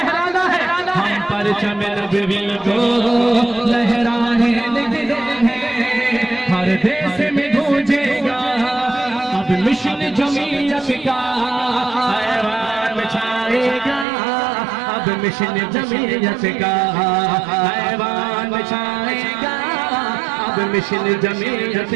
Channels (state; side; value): drops out; left; at 14.1 s